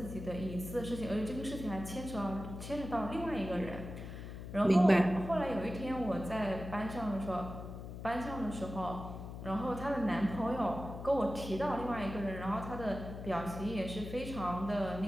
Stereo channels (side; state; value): left; noise; hum, 9 dB below the sound